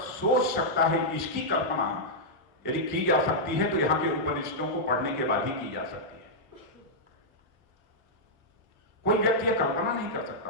सकता है, इसकी कल्पना यदि की जा सकती है तो यहां के उपनिषदों को पढ़ने के बाद ही की जा सकती है। कोई व्यक्ति यह कल्पना नहीं कर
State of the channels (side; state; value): both; normal; correlation -0.08